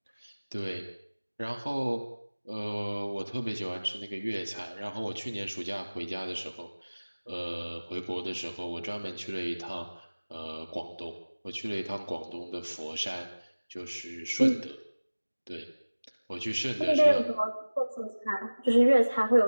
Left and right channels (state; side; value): inverted; both; correlation -1.00